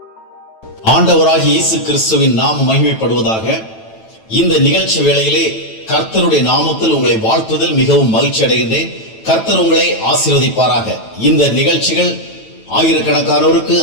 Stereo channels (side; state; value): right; late; 9.0 ms